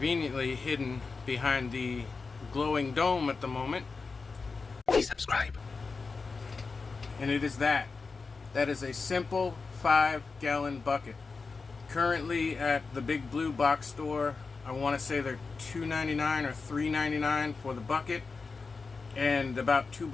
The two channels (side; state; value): right; quieter; 4.4 dB